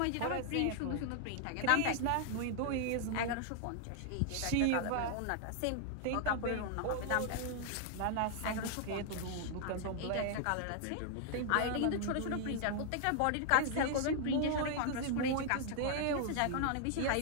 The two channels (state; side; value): different; both; correlation 0.00